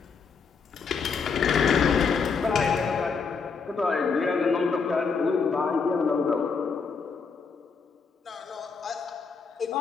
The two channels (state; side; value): quieter; right; 5.3 dB